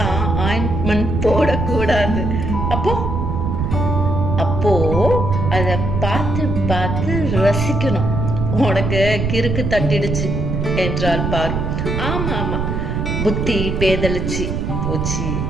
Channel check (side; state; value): right; noise; rumble, 1 dB below the sound